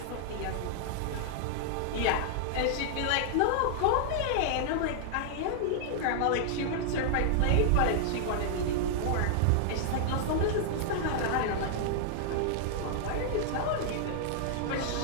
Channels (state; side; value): different; both; correlation -0.01